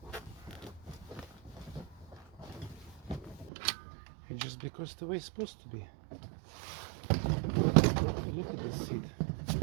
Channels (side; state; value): left; drops out; at 3.5 s